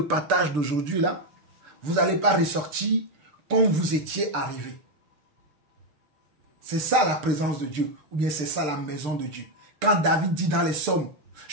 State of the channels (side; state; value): left; late; 6.7 ms